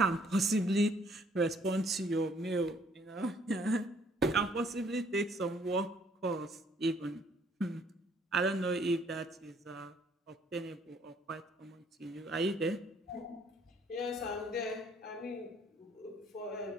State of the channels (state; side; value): normal; both; correlation 0.63